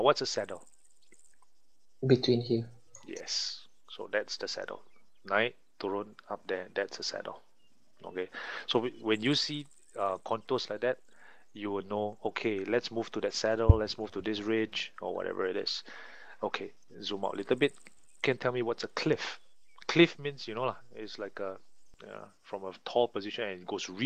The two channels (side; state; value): both; identical; correlation 1.00